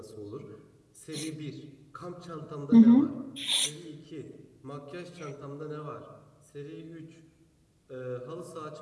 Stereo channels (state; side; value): identical; both; correlation 1.00